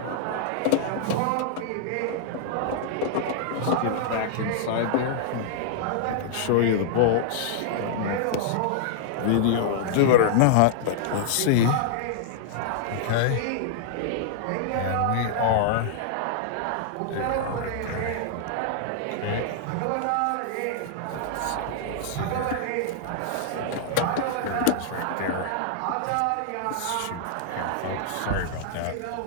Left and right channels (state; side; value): different; both; correlation -0.01